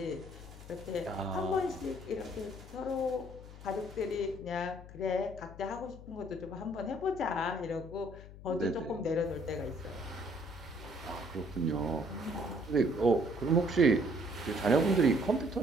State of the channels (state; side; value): noise; left; hum, 15 dB below the sound